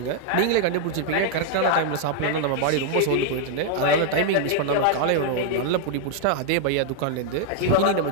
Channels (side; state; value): both; different; correlation 0.00